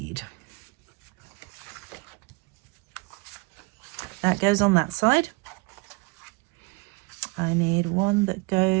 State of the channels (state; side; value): quieter; left; 27.9 dB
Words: that goes on that side. I need one that